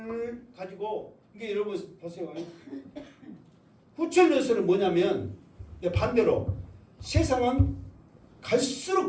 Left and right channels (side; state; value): both; identical; correlation 1.00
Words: 가지고 이게 여러분 보세요. 후천년설은 뭐냐면 반대로 세상은